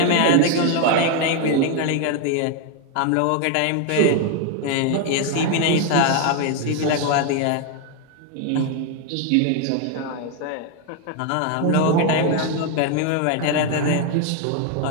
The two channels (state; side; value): different; both; correlation 0.01